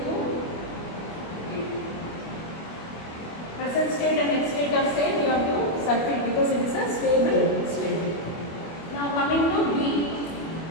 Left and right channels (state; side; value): late; right; 25 ms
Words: D2. Present state and next state are same. You have to circle because it is a stable state. Now coming to B.